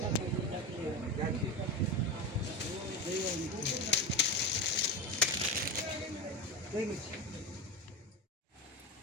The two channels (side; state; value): both; normal; correlation 0.21